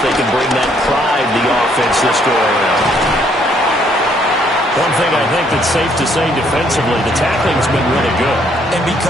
they can bring that pride to the offense this go around. One thing I think that's safe to say defensively, the tackling's been really good. And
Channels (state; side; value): normal; both; correlation 0.67